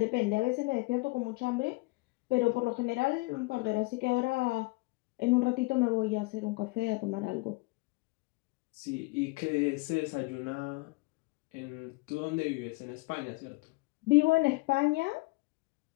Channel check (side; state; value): right; quieter; 24.4 dB